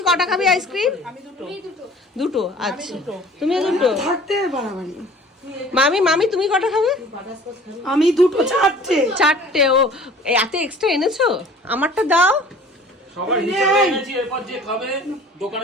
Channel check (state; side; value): normal; both; correlation 0.48